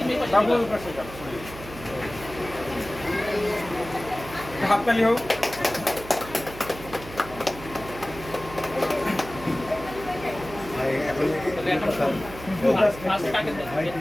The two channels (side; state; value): right; noise; hum, 14 dB below the sound